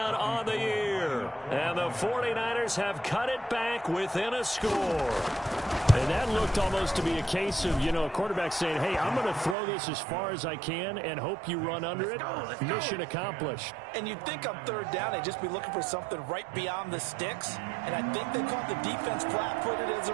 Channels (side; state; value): left; drops out; at 9.6 s